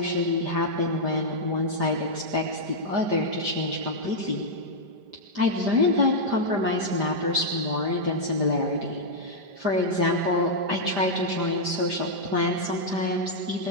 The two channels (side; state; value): left; late; 5.0 ms